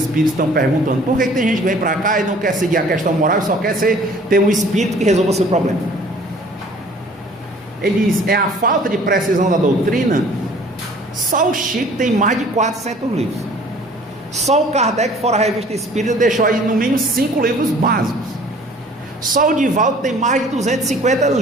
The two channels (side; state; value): both; normal; correlation 0.52